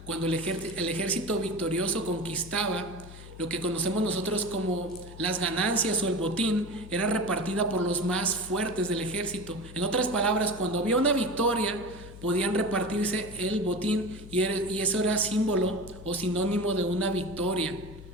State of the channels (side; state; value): left; noise; hum, 15 dB below the sound